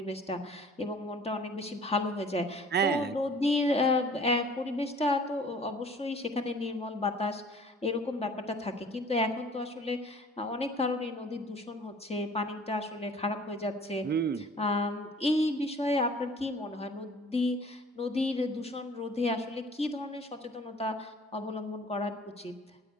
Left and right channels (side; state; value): both; normal; correlation 0.50